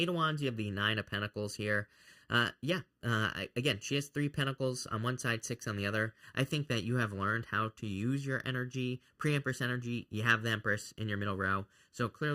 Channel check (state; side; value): identical; both; correlation 1.00